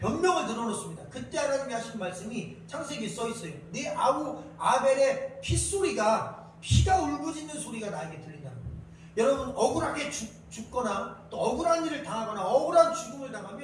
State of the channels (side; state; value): both; identical; correlation 1.00